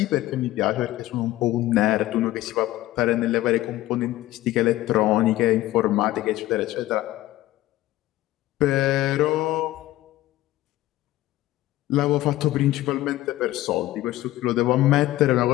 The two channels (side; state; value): right; quieter; 15.9 dB